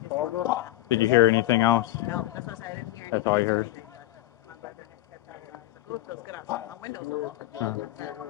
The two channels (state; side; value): quieter; right; 15.9 dB